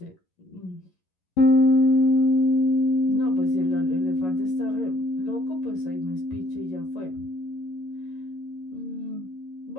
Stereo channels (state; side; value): late; right; 11 ms